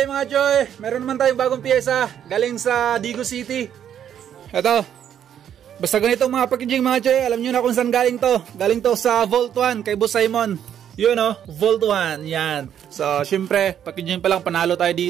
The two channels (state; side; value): quieter; left; 9.6 dB